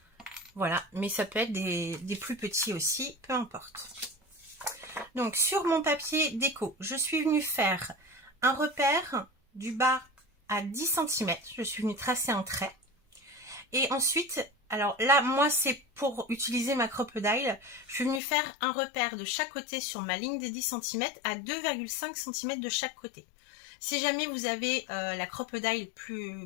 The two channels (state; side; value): drops out; right; at 18.2 s